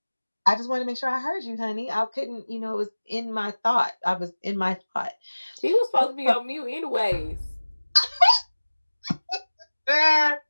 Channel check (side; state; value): both; inverted; correlation -1.00